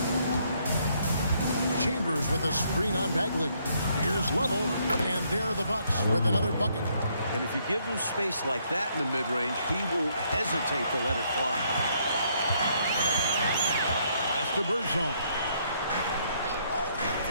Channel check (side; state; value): both; inverted; correlation -0.70